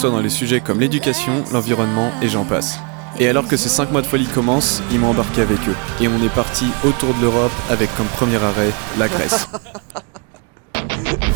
dans les sujets comme l'éducation, l'environnement et j'en passe. Et alors que ces 5 mois de folie commencent, ils m'ont embarqué avec eux. Et on est parti autour de l'Europe avec comme premier arrêt la Grèce.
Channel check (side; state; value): left; quieter; 33.8 dB